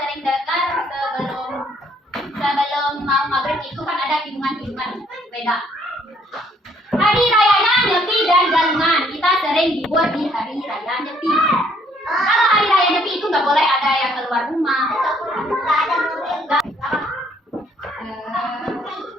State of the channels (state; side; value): normal; both; correlation 0.66